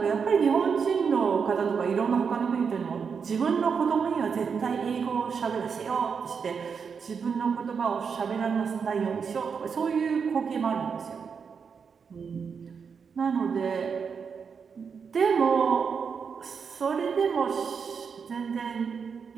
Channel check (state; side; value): quieter; left; 6.1 dB